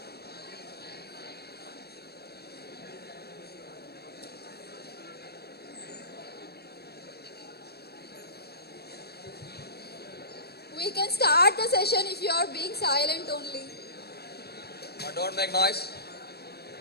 We can start the session if you are being silent only. Don't make noise.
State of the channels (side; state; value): right; late; 0.47 ms